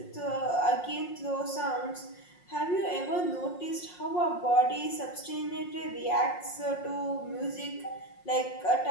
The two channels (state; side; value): late; right; 5.6 ms